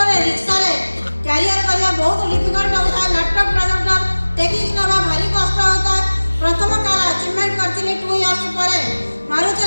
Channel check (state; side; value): inverted; both; correlation -1.00